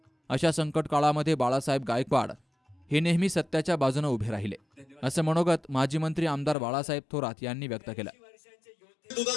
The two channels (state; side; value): drops out; right; at 6.6 s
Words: अशा संकट काळामध्ये बाळासाहेब गायकवाड हे नेहमी सत्याच्या बाजूने उभे राहिले, असं मनोगत माजी मंत्री आमदार बाळासाहेब थोरात यांनी व्यक्त केलं.